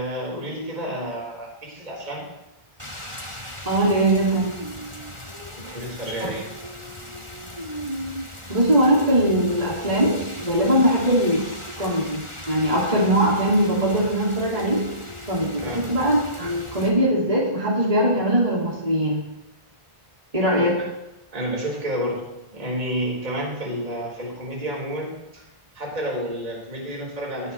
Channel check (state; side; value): late; left; 1.4 ms